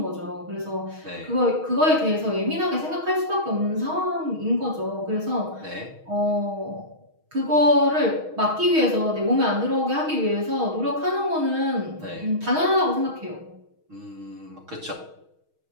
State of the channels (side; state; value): left; late; 6.3 ms